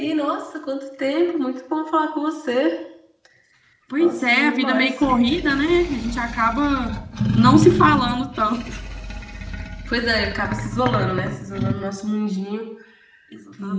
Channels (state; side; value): identical; both; correlation 1.00